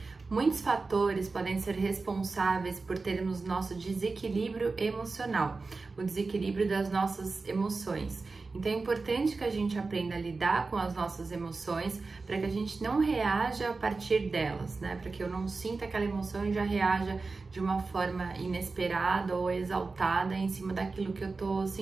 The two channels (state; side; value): quieter; left; 4.0 dB